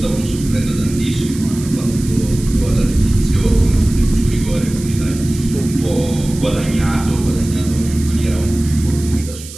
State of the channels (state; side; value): noise; right; hiss, 15 dB below the sound